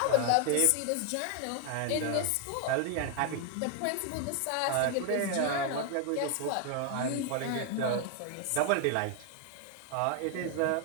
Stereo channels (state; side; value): different; both; correlation 0.00